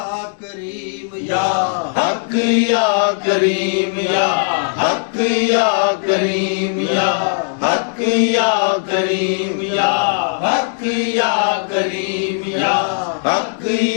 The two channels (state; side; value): silent; right; digital silence